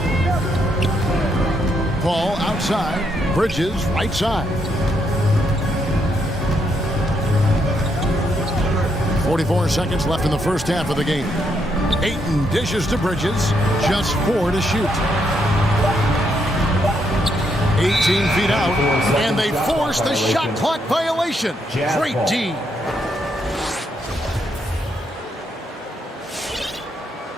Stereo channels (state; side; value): normal; both; correlation 0.76